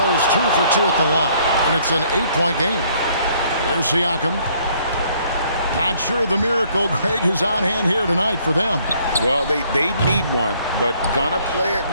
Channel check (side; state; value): both; inverted; correlation -0.64